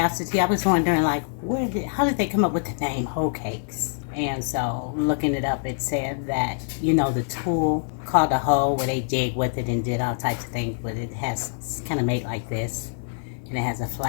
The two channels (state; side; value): silent; right; digital silence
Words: I was wondering, like, how did they come up with the name hoe cakes? And so, looking it up, it said that, the tool called a hoe, where they dig with it and did all types of things, but it's kind of made like this, and it has a